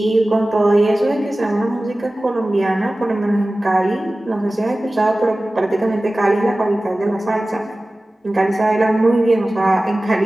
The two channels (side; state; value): both; normal; correlation 0.97